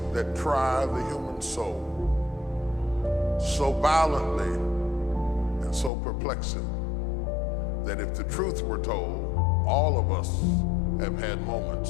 that try the human soul so violently and so perplexing that if the truth were told, all of us have had moments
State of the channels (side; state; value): right; drops out; at 5.9 s